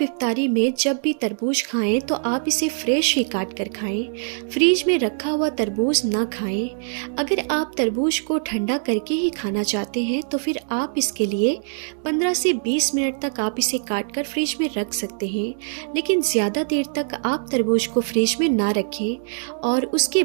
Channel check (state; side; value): silent; left; digital silence